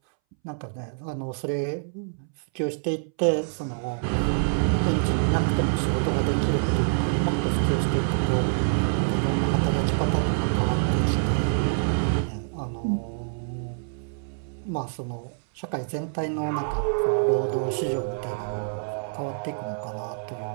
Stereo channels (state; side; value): silent; left; 61 dB below the other